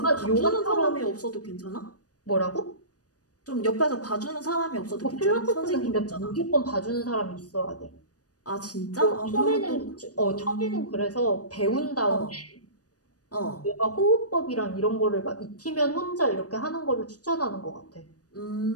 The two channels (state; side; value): late; right; 0.67 ms